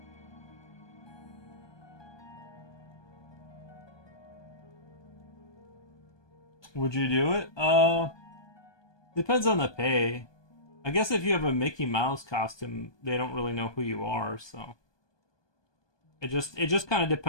Would you do it? Depends on the pay. I guess if you have a Mickey Mouse costume, they don't really know who you are, so it just kind of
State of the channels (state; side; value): late; right; 1.2 ms